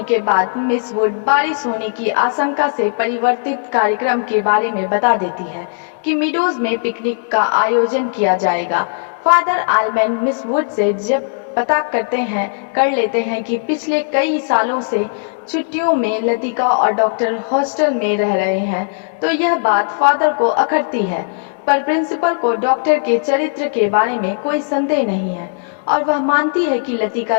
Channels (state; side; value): silent; right; digital silence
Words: के बाद मिस वुड बारिश होने की आशंका से परिवर्तित कार्यक्रम के बारे में बता देती है कि मीडोज में पिकनिक का आयोजन किया जाएगा। फादर आलमैन मिस वुड से जब पता कर लेते हैं कि पिछले कई सालों से छुट्टियों में लतिका और डॉक्टर हॉस्टल में रह रहे हैं, तो यह बात फादर को अखरती है। पर प्रिंसिपल को डॉक्टर के चरित्र के बारे में कोई संदेह नहीं है और वह मानती है कि लतिका